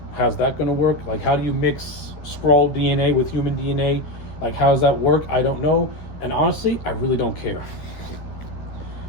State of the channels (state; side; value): late; right; 13 ms